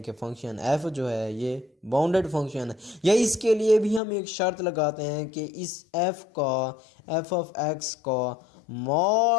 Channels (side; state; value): right; drops out; at 4.0 s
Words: कि फंक्शन f जो है ये बाउंडेड फंक्शन है। या इसके लिए भी हम एक शर्त लगाते हैं कि इस f का f ऑफ x का